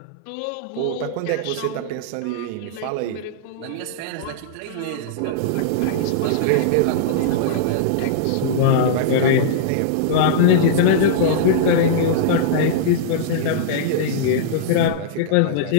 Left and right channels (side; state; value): both; different; correlation -0.02